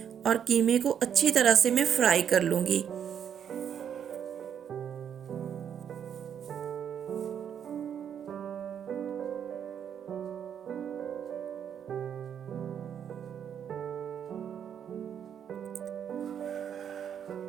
और कीमे को अच्छी तरह से मैं फ्राई कर लूँगी।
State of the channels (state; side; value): quieter; left; 8.6 dB